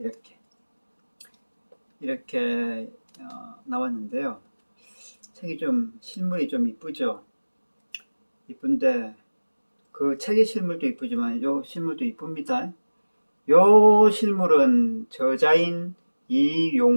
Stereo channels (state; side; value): inverted; both; correlation -1.00